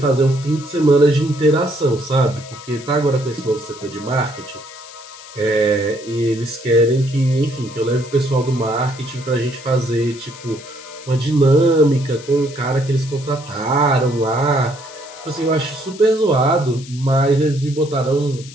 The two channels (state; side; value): noise; left; hiss, 18 dB below the sound